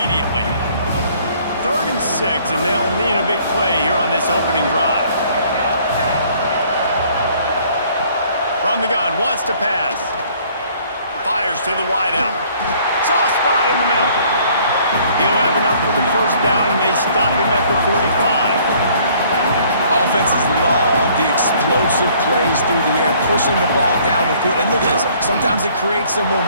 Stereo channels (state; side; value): inverted; both; correlation -0.59